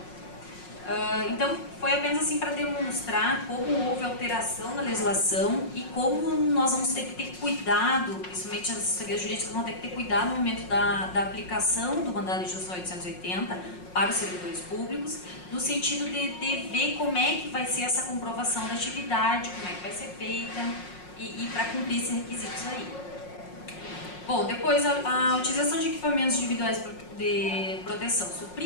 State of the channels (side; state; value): right; late; 5.5 ms